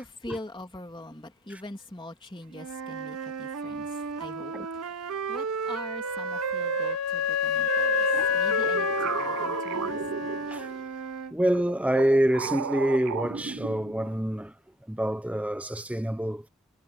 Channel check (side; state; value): both; normal; correlation 0.43